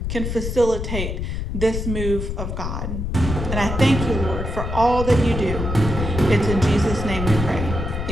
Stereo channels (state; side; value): noise; left; rumble, 3 dB below the sound